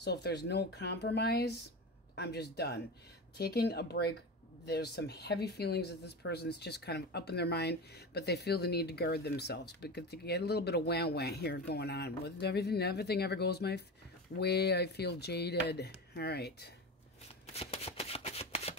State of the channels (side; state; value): both; normal; correlation 0.25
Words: if there's no compromise, I'm just done. Taking a break. There's some heavy feelings that this person's just kind of up in their mind, but they feel the need to guard themselves because they get a little bit of wah-wah here going on. With everything ever goes my way, I feel jaded. All right.